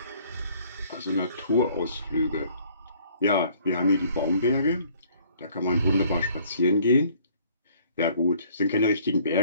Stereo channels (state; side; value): inverted; both; correlation -0.59